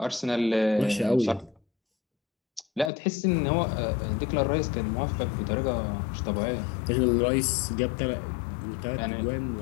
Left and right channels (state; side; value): drops out; right; at 2.9 s